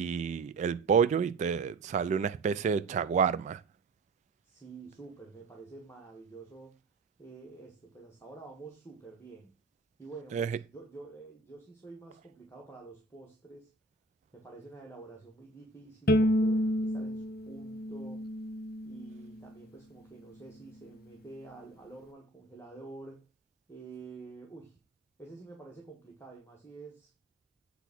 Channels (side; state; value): left; quieter; 3.2 dB